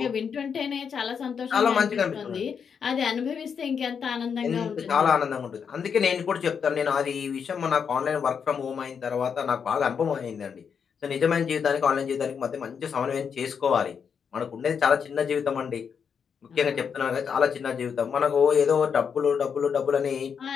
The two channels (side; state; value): right; quieter; 6.8 dB